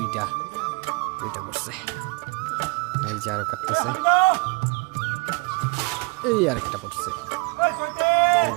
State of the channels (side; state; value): left; quieter; 27.9 dB